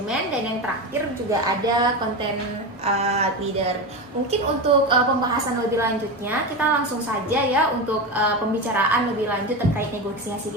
dan yang terakhir juga ada content leader. Mungkin untuk pembahasan lebih lanjutnya, kita langsung saja ya untuk pembicaraan lebih lanjut terkait negosiasi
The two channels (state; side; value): normal; both; correlation 0.20